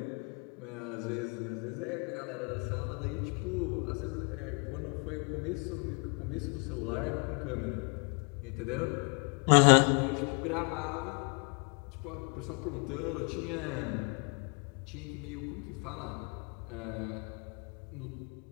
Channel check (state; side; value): quieter; right; 35.8 dB